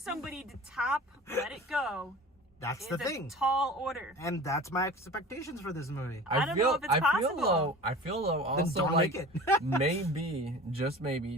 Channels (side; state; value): both; normal; correlation 0.39